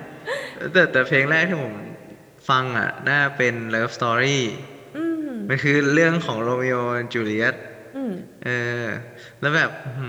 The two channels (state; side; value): identical; both; correlation 1.00